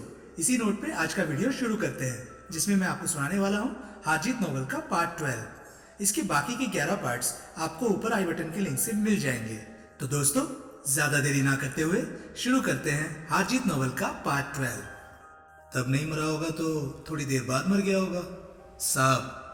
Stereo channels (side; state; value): both; identical; correlation 1.00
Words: इसी नोट पे आज का वीडियो शुरू करते हैं, जिसमें मैं आपको सुनाने वाला हूँ हारजीत नॉवल का पार्ट 12। इसके बाकी के 11 पार्ट्स आपको ऊपर आई बटन के लिंक से मिल जाएंगे। तो दोस्तों, ज्यादा देरी ना करते हुए शुरू करते हैं हारजीत नॉवल का पार्ट 12। तब नहीं मरा होगा तो थोड़ी देर बाद मर गया होगा।